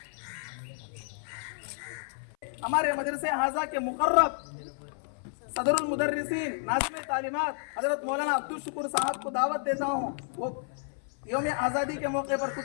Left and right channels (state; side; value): silent; right; 57 dB below the other